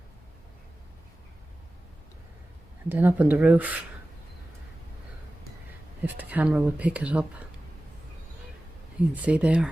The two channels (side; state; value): both; normal; correlation 0.96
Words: And then up on the roof, if the camera would pick it up, you can see there.